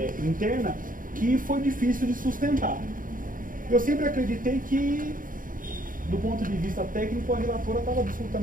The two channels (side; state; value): left; late; 0.40 ms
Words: interna que foi difícil de sustentar. Eu sempre acreditei que, do ponto de vista técnico, a relatora estava